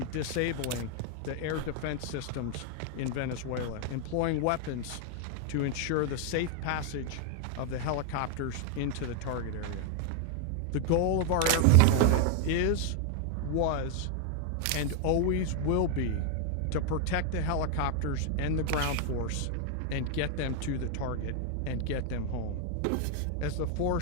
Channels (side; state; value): both; different; correlation 0.00